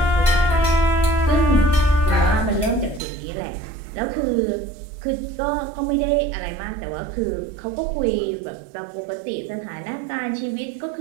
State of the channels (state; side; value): drops out; left; at 3.0 s